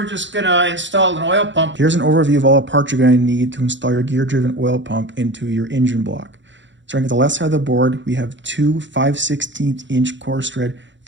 just going to install an oil pump. Here's an overview of all the parts you're going to need to install your gear-driven oil pump into your engine block. Starting at the left side of the board, we have two 5/16 inch coarse thread,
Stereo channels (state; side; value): late; left; 0.54 ms